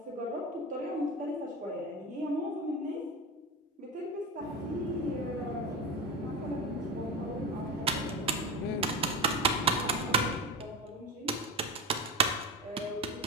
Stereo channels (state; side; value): normal; both; correlation 0.22